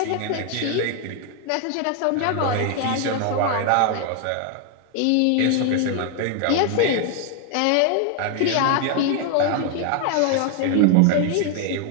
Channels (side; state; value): both; different; correlation 0.01